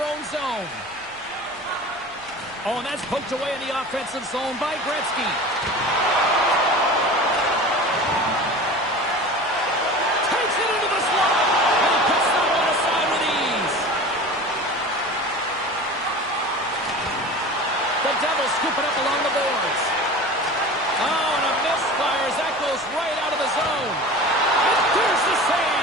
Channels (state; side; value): noise; left; rumble, 27 dB below the sound